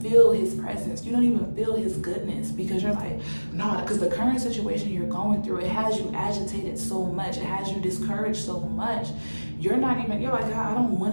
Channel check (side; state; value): both; inverted; correlation -1.00